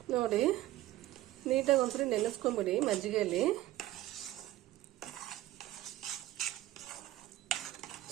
ನೋಡಿ. ನೀಟಾಗಿ ಒಂದ್ಸರಿ ನೆನೆಸ್ಕೊಂಡ್ಬಿಡಿ ಮಜ್ಜಿಗೆಯಲ್ಲಿ.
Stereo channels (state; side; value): quieter; left; 15.5 dB